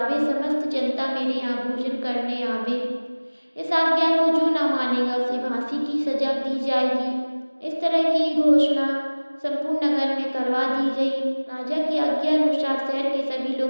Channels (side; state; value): both; inverted; correlation -1.00